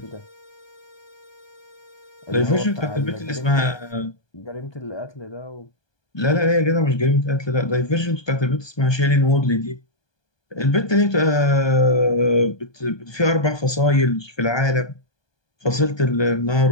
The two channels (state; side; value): late; right; 1.2 ms